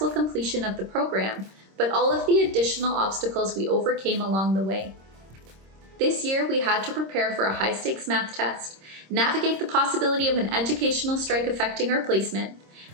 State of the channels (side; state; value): left; late; 26 ms